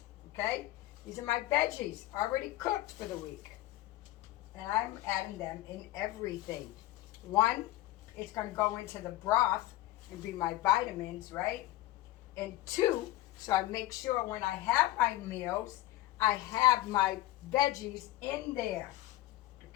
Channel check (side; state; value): right; quieter; 16.2 dB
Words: Okay? These are my veggies already cooked for the week. And I'm adding them in everything. 1, it's going to go into the broth and be my vitamins, right? And 2, so I make sure when I have my meals, I have my veggies in there.